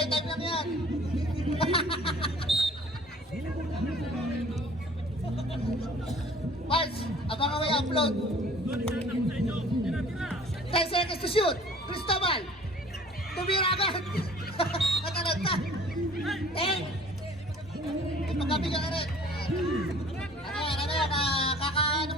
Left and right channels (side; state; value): both; normal; correlation 0.51